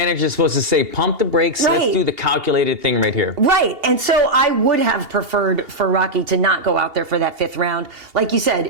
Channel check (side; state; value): left; late; 2.8 ms